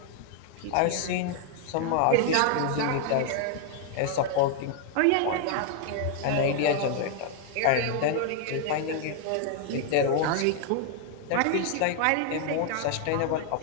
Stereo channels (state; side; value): different; both; correlation 0.00